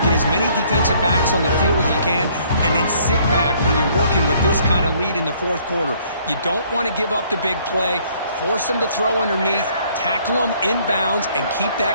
Get as many defensive backs on the field as you can, and then sit back when you're working with this kind of lead in the 4th quarter. You don't want to give up the big play. Force them to throw underneath, tackle them inbounds, and keep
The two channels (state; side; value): inverted; both; correlation -0.62